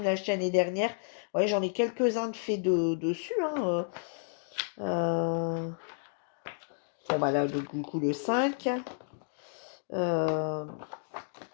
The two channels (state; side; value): silent; right; digital silence